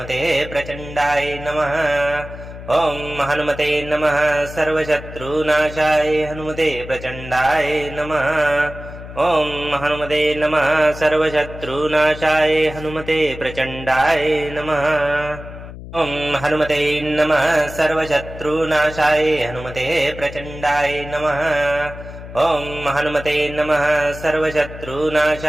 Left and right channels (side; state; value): left; noise; hum, 13 dB below the sound